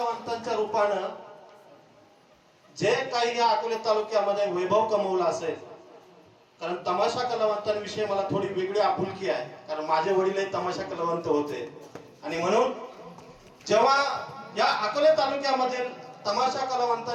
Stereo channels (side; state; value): both; identical; correlation 1.00